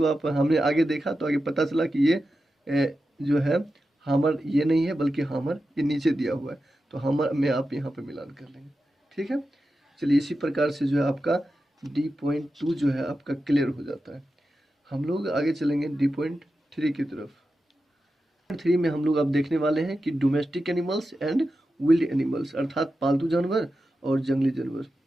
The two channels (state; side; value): normal; both; correlation 0.91